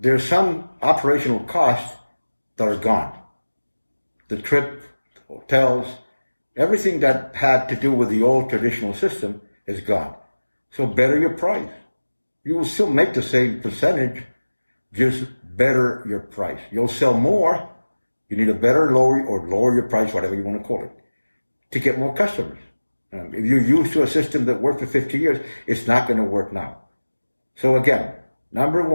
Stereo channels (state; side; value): inverted; both; correlation -1.00